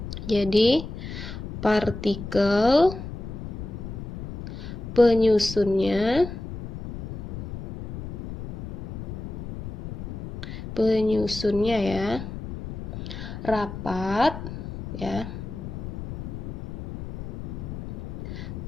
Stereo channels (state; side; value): noise; left; rumble, 9 dB below the sound